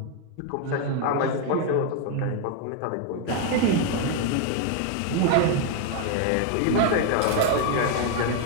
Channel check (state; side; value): different; both; correlation 0.01